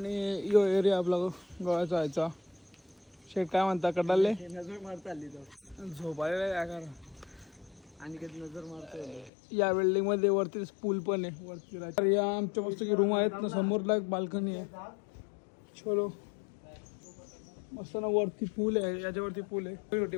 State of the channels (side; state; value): right; drops out; at 9.3 s